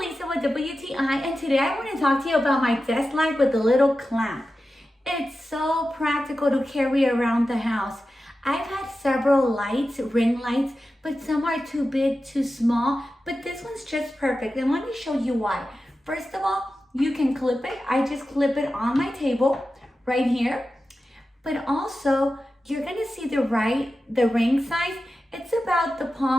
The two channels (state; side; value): normal; both; correlation 0.93